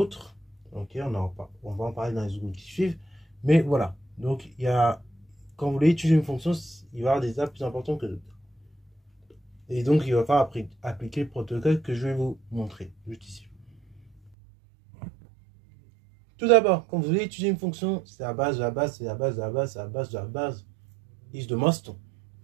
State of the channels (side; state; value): left; drops out; at 14.3 s